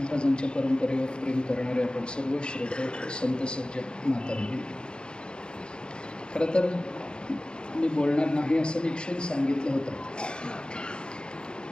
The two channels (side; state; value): right; late; 0.050 ms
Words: परंपरेवर प्रेम करणारे आपण सर्व श्रोते संत सज्जन माता भगिनी, खरं तर मी बोलणार नाही असं निश्चित सांगितलं होतं,